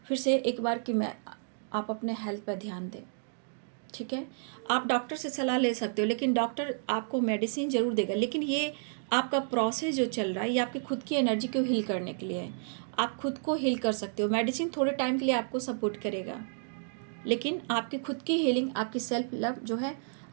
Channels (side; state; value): left; silent; digital silence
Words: फिर से एक बार कि आप अपने हेल्थ पर ध्यान दें। ठीक है, आप डॉक्टर से सलाह ले सकते हो, लेकिन डॉक्टर आपको मेडिसिन ज़रूर देगा, लेकिन ये आपका प्रोसेस जो चल रहा है ये आपकी खुद की एनर्जी को हील करने के लिए है। आप खुद को हील कर सकते हो, मेडिसिन थोड़े टाइम के लिए आपको सपोर्ट करेगा, लेकिन आपकी खुद की हीलिंग, आपकी सेल्फ लव जो है,